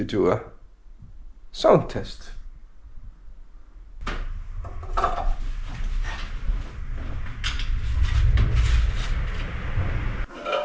do a sound test.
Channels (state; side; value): identical; both; correlation 1.00